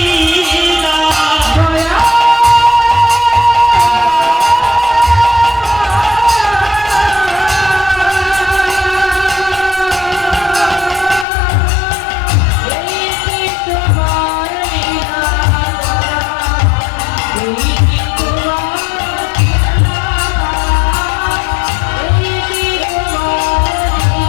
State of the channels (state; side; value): drops out; right; at 11.2 s